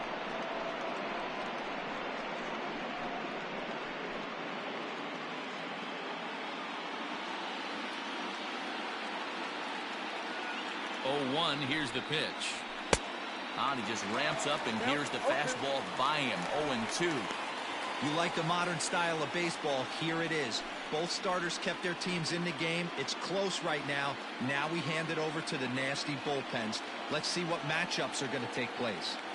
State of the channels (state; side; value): identical; both; correlation 1.00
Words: Oh, 1. Here's the pitch. He just ramps up, and here's the fastball by him. 0-2. You like the modern style of baseball, here it is. Both starters kept their teams in the game. It's close right now. Now we hand it over to the nasty bullpens. Let's see what matchups are going to take place.